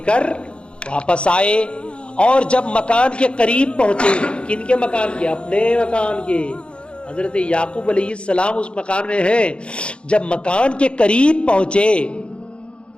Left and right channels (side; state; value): right; late; 0.057 ms